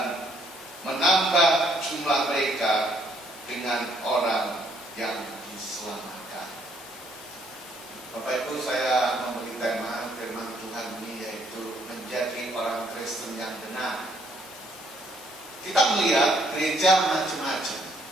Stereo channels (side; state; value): both; normal; correlation 0.67